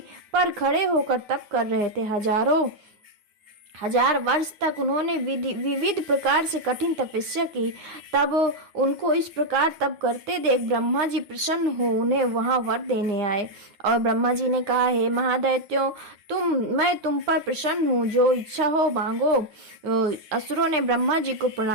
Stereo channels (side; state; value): left; late; 9.8 ms